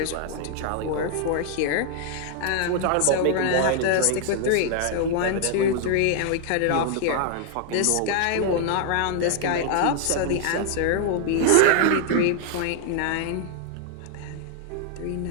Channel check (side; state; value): both; different; correlation 0.00